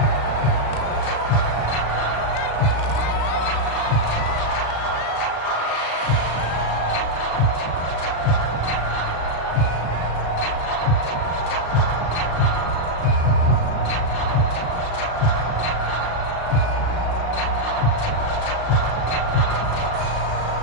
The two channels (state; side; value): late; right; 36 ms